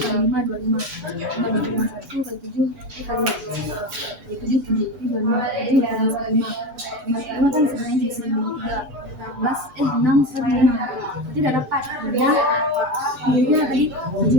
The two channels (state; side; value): late; left; 6.8 ms